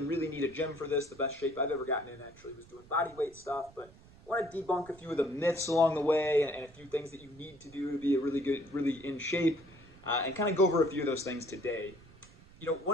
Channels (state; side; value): noise; right; rumble, 23 dB below the sound